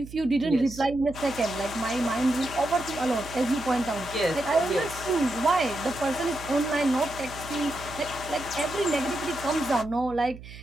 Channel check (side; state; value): right; noise; hum, 15 dB below the sound